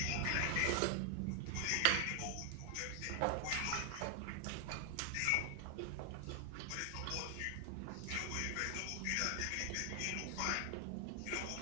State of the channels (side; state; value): both; different; correlation 0.00